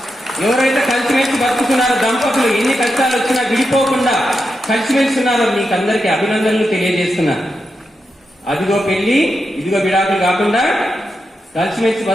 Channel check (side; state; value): both; normal; correlation 0.87